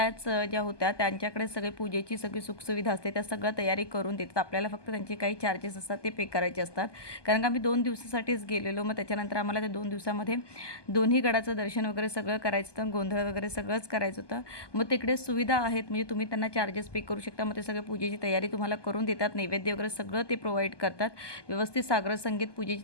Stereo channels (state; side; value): late; right; 1.2 ms